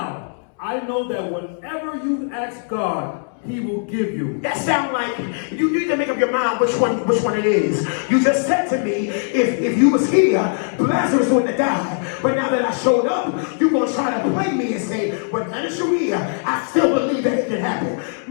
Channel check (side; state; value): right; silent; 65 dB below the other